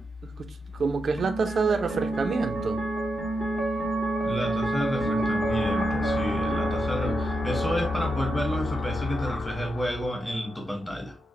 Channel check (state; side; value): normal; both; correlation 0.85